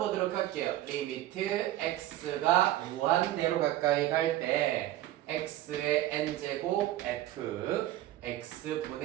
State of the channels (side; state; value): left; quieter; 14.2 dB